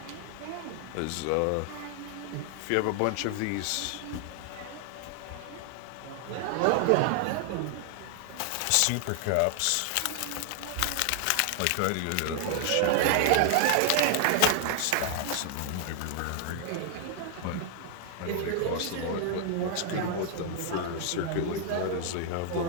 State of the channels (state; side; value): different; both; correlation 0.00